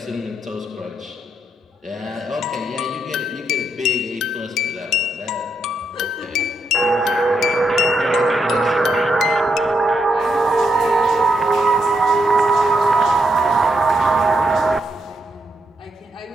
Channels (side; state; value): both; normal; correlation 0.80